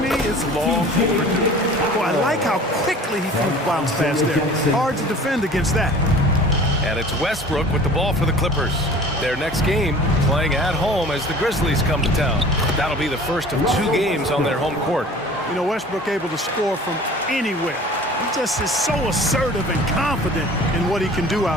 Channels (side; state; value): both; normal; correlation 0.45